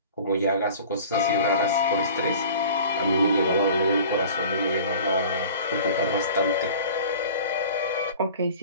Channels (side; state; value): both; inverted; correlation -0.43